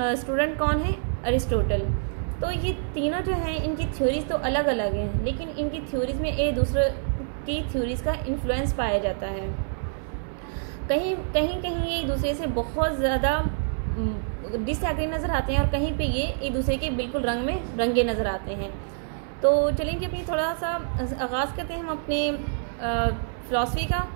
स्टूडेंट कौन है? अरिस्टोटल। तो ये तीनों जो हैं इनकी थ्योरीज तो अलग अलग हैं, लेकिन इनकी थ्योरीज में एक दूसरे की थ्योरीज का इन्फ्लुएंस पाया जाता है। कहीं ये एक दूसरे से बहुत ज़्यादा डिसएग्री नज़र आते हैं और कहीं पे ये एक दूसरे के बिल्कुल रंग में रंगे नज़र आते हैं। तो चलेंगे अपनी थोड़ा सा आगाज़ करते हैं हम अपने फ़िलासफ़ी का।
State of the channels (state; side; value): silent; left; 61 dB below the other